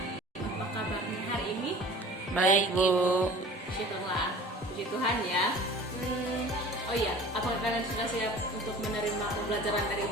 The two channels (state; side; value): normal; both; correlation 0.43